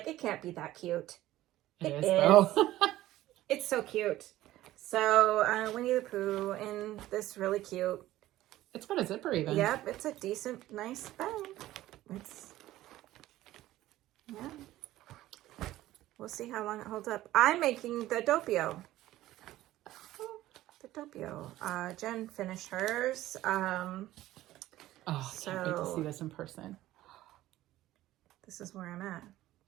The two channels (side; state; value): left; quieter; 15.2 dB